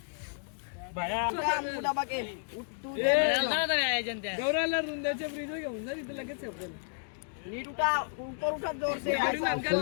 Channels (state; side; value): silent; right; digital silence